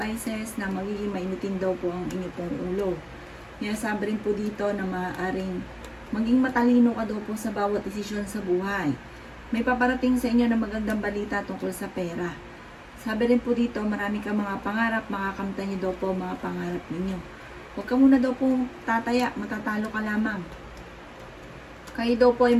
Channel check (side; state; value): both; identical; correlation 1.00